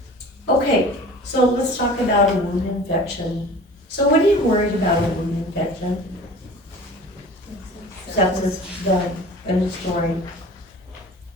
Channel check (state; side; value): normal; both; correlation 0.42